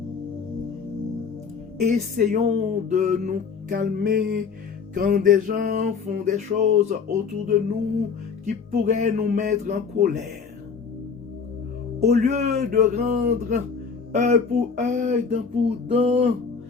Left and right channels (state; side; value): quieter; right; 5.7 dB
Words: Essayons de nous calmer quand des gens font des choses autour de nous qui pourraient nous mettre en colère. Au lieu de rendre œil pour œil, dent pour dent,